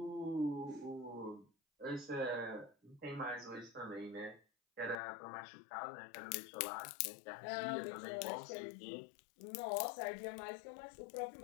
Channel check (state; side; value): drops out; right; at 5.0 s